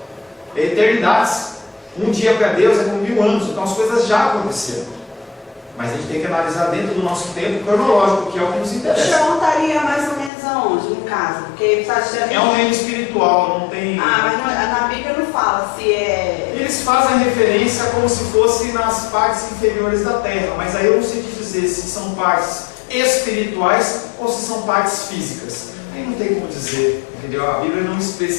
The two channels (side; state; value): right; drops out; at 10.3 s